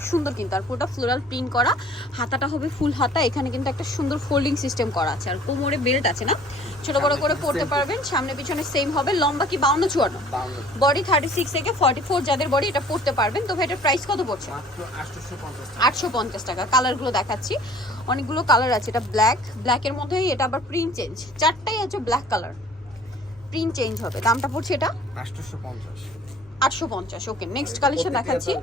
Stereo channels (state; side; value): normal; both; correlation 0.52